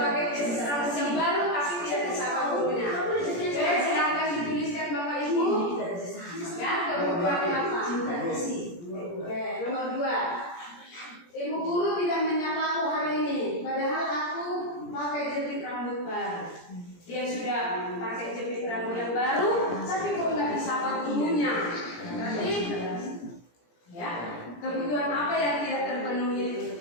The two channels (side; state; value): right; late; 17 ms